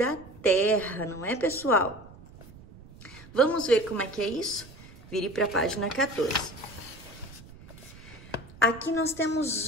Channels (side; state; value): right; noise; rumble, 19 dB below the sound